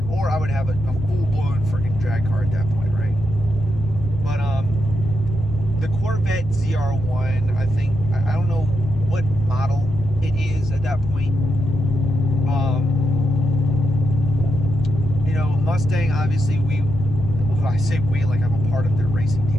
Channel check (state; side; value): normal; both; correlation 0.83